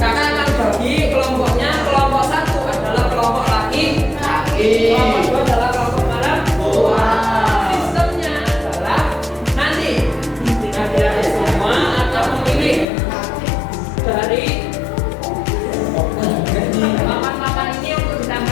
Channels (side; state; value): right; drops out; at 12.9 s